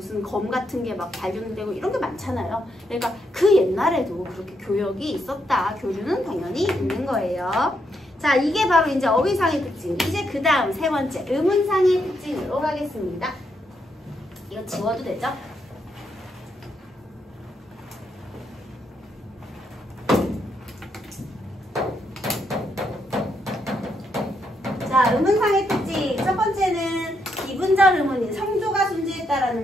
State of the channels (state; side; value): normal; both; correlation 0.79